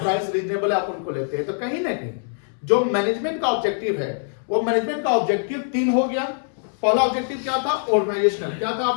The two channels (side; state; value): right; silent; 63 dB below the other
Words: रीजनेबल है, आप उनको लेते हैं। तो कहीं ना कहीं जो मैनेजमेंट का ऑब्जेक्टिव है, वो मैनेजमेंट का ऑब्जेक्टिव 3 हो गया। पहला ऑब्जेक्टिव क्या था? ऑर्गेनाइजेशनल। क्या था